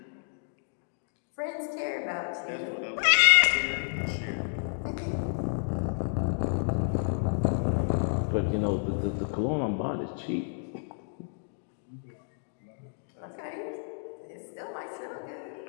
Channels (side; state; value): right; silent; digital silence